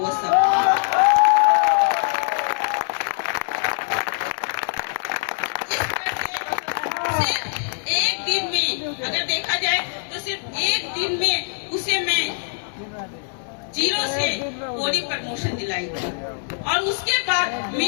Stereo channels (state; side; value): silent; right; digital silence